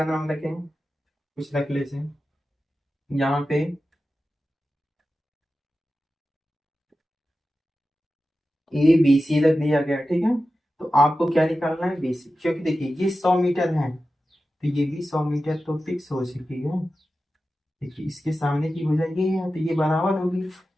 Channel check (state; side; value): normal; both; correlation 0.93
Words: नाम रखें? कुछ रख लेते हैं यहाँ पे। ए बी सी रख दिया गया। ठीक है, तो आपको क्या निकालना है? B C. क्योंकि देखिए ये 100 मीटर है तो ये भी 100 मीटर तो फिक्स हो चुकी है। देखिए इसके सामने की भुजा ये है तो ये बराबर होगी।